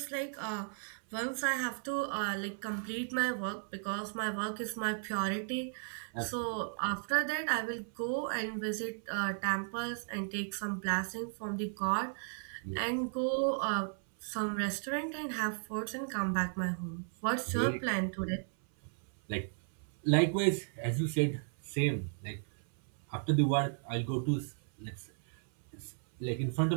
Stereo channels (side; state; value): left; silent; 54 dB below the other